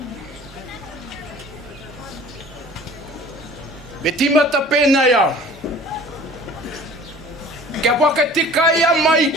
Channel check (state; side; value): normal; both; correlation 0.46